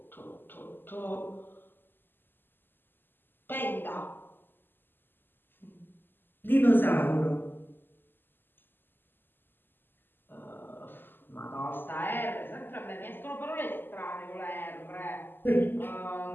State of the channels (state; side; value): late; right; 0.094 ms